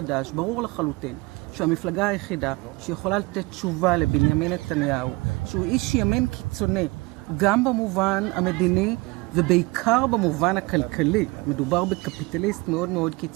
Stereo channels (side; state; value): left; quieter; 24.2 dB